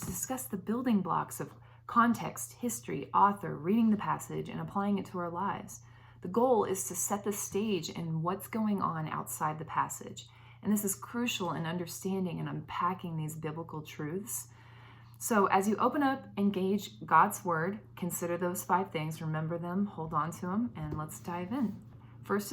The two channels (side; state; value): both; identical; correlation 1.00